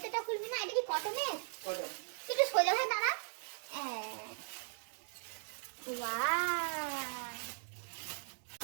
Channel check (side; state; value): left; silent; digital silence